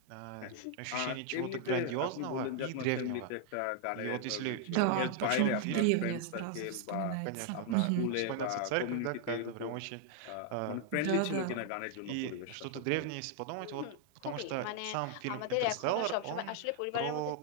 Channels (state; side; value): different; both; correlation 0.00